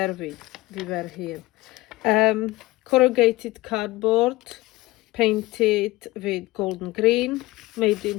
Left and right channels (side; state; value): right; quieter; 19.6 dB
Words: we? We were here. Corrugated cardboard, painted with golden green, made